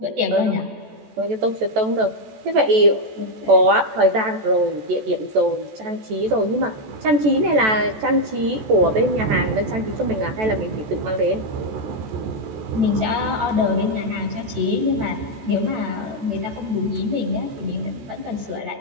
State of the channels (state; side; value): late; left; 14 ms